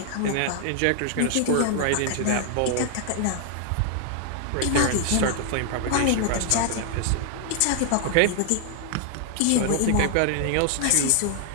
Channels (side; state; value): both; different; correlation 0.00